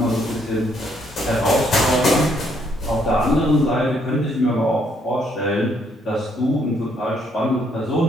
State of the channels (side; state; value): both; normal; correlation 0.70